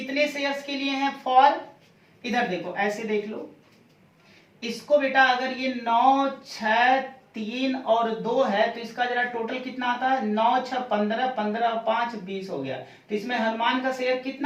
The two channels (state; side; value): identical; both; correlation 1.00